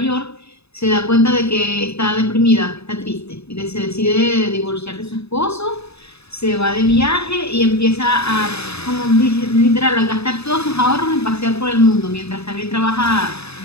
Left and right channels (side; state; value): right; late; 0.79 ms